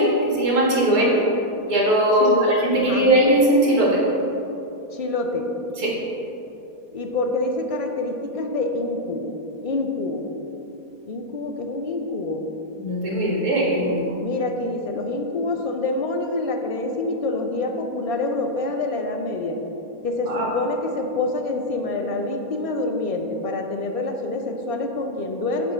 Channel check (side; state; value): left; late; 4.2 ms